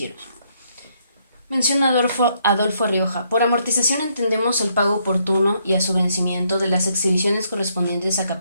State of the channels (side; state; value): both; inverted; correlation -0.73